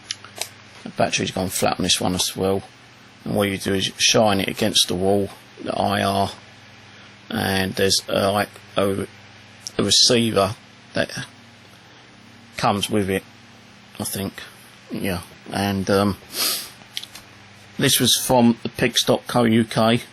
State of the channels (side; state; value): both; identical; correlation 1.00